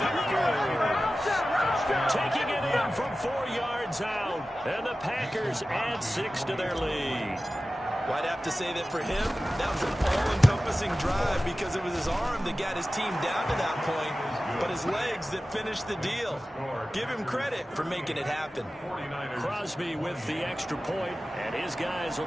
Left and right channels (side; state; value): both; normal; correlation 0.95